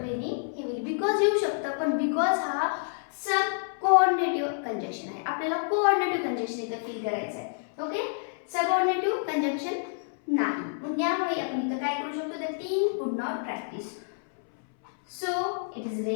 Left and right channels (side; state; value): right; silent; 59 dB below the other